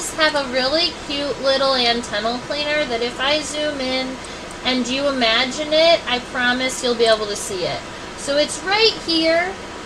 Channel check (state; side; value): identical; both; correlation 1.00